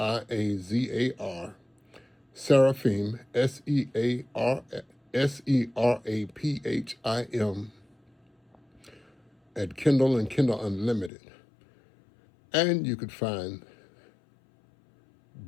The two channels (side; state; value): right; drops out; at 11.1 s